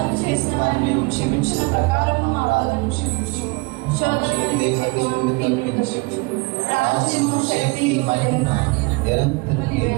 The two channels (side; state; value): left; quieter; 26.9 dB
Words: చేసిన వారిని మేము క్షమించిన ప్రకారం మా వాదన క్షమించు. శోధనకి రాజ్యము శక్తి మహిమ నిరంతరం